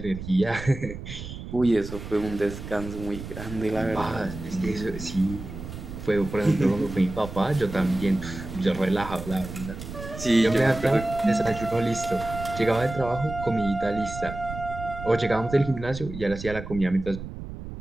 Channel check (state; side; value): noise; right; rumble, 10 dB below the sound